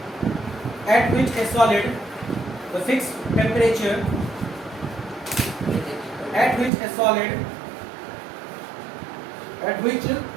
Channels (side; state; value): left; drops out; at 6.7 s